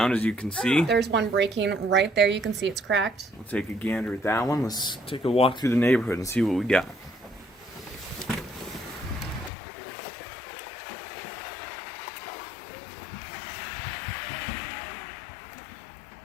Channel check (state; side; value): drops out; right; at 9.5 s